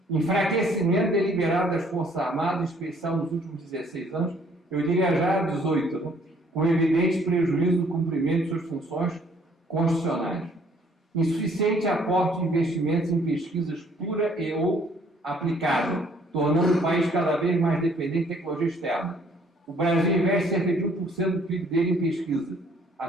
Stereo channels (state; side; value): normal; both; correlation 0.61